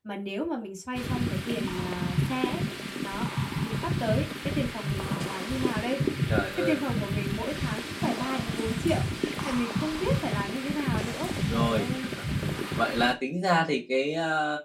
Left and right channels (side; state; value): both; identical; correlation 1.00